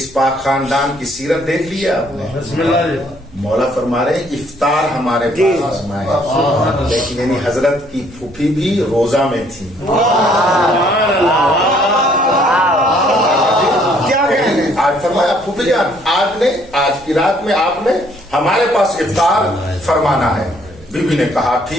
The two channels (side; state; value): right; noise; hum, 25 dB below the sound